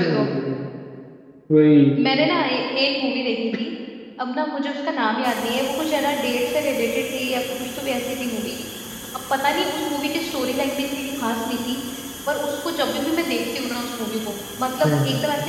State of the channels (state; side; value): identical; both; correlation 1.00